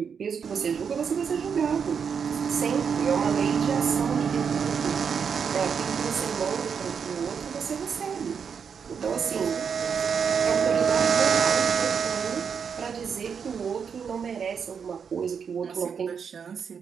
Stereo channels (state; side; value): quieter; left; 6.7 dB